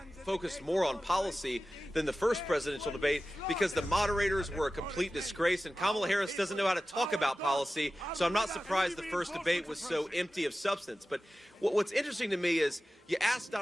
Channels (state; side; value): normal; both; correlation 0.95